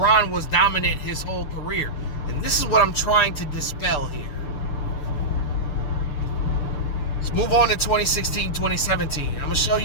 was dominant his whole career. And this is what I'm trying to dispel here. Let's move on to 2016, 2017. I'm going to show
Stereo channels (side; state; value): right; late; 6.8 ms